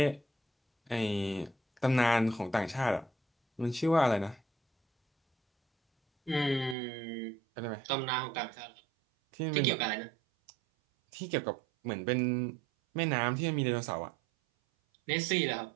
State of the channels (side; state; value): left; drops out; at 6.8 s